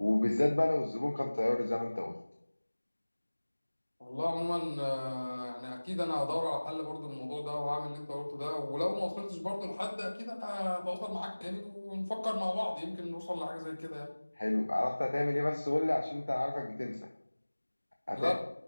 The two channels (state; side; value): inverted; both; correlation -1.00